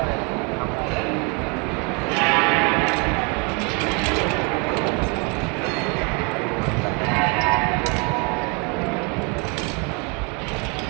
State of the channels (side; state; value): left; quieter; 32.4 dB